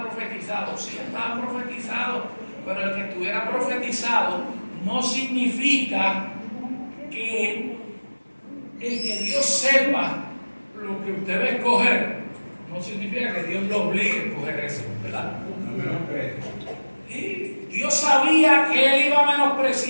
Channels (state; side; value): inverted; both; correlation -1.00